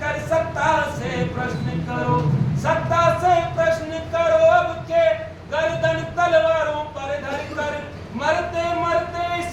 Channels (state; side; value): identical; both; correlation 1.00